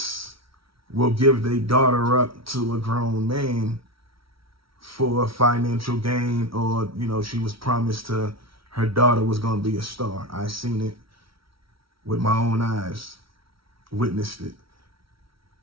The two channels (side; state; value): left; late; 0.75 ms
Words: will give their daughter up to a grown man for financial gain, or, you know, she was promised to, her daughter was going to be a star. I seen it with my own eyes, witnessed it.